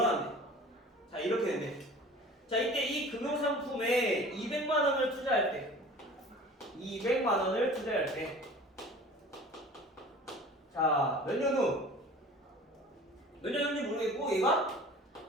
자, 이렇게 되네. 자, 이때 이 금융상품에 200만 원을 투자할 때 200만 원을 투자할 때, 자, 몇 년 후? 몇 년 후인지 모르겠고 얘가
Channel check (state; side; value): normal; both; correlation 0.43